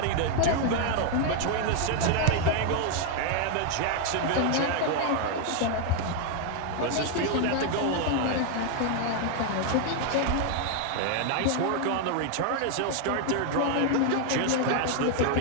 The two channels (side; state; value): both; different; correlation 0.00